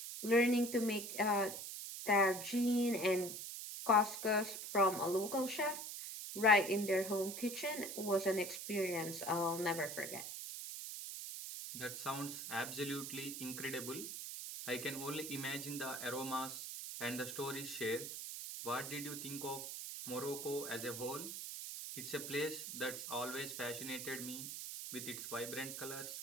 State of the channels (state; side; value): noise; right; hiss, 7 dB below the sound